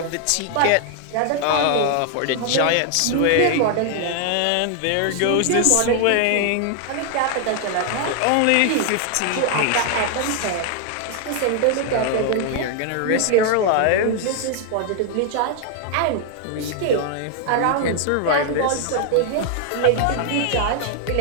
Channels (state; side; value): different; both; correlation 0.00